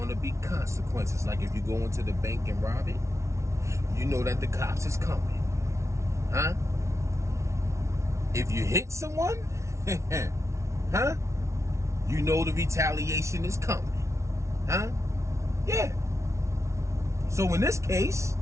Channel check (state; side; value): late; left; 0.14 ms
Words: be consequences. Like if you go into the bank and rob it, you know that the cops is coming, huh? If you hit someone, huh? You know the retaliation is coming, huh? Yeah. So in this case,